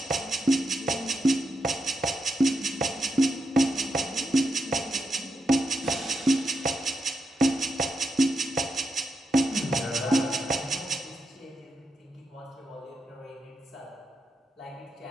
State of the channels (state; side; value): normal; both; correlation 0.85